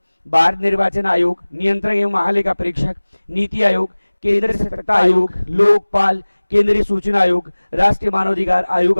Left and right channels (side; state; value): both; inverted; correlation -1.00